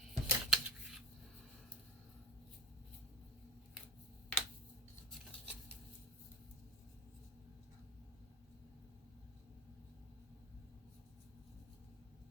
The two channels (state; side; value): normal; both; correlation 0.29